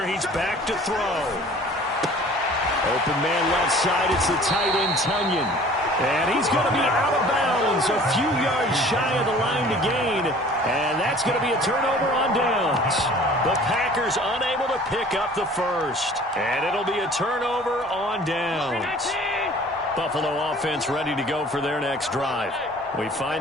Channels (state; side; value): normal; both; correlation 0.49